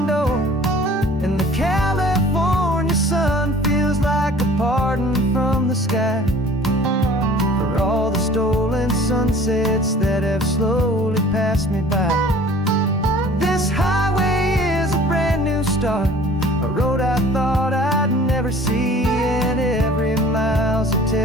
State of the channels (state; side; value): normal; both; correlation 0.49